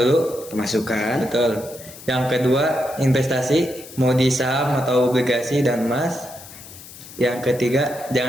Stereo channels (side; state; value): left; noise; hiss, 17 dB below the sound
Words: Pemasukan. Betul. Yang kedua investasi, mau di saham atau obligasi dan emas. Yang ketiga